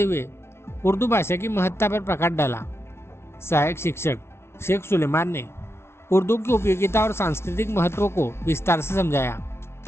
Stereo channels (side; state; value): right; late; 0.12 ms